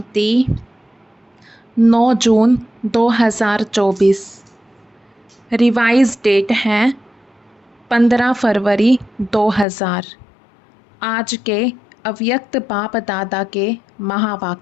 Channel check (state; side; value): drops out; right; at 9.7 s